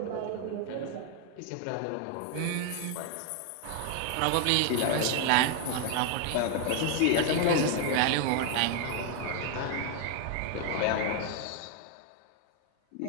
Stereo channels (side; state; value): both; different; correlation 0.00